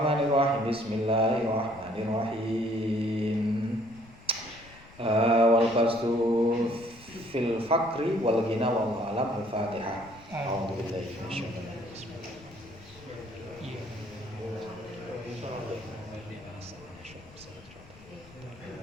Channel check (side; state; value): left; noise; rumble, 22 dB below the sound